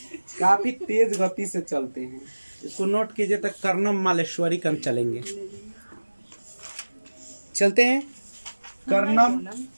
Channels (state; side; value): inverted; both; correlation -1.00